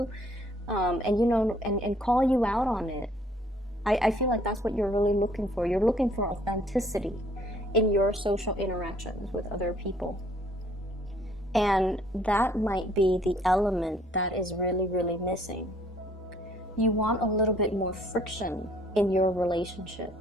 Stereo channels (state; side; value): normal; both; correlation 0.61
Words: and you know, and call you out on it. I feel like that's what you're really looking for. You're looking for authenticity in your social interactions with other people. And that might be the element that is really, really missing. You want a little bit more friction in your relationship.